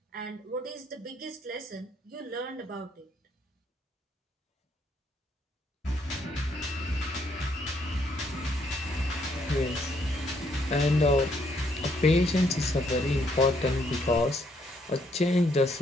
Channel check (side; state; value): both; normal; correlation 0.71